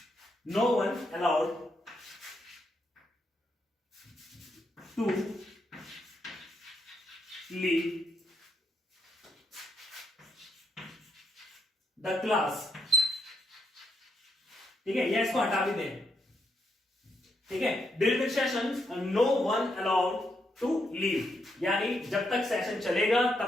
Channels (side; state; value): both; normal; correlation 0.78